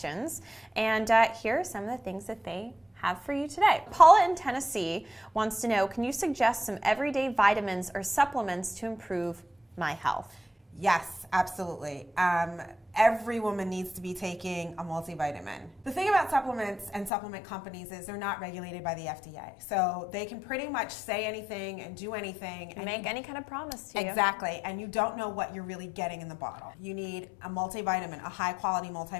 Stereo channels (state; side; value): drops out; right; at 17.1 s